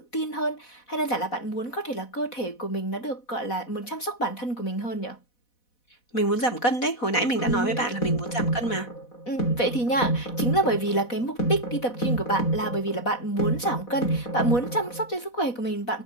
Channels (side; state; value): right; late; 4.1 ms